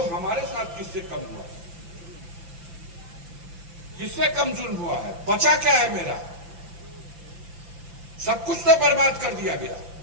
हमारे साथ किससे कम हुआ, किससे कम जुल्म हुआ है। बचा क्या है मेरा? सब कुछ तो बर्बाद कर दिया गया।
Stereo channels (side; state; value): left; late; 5.9 ms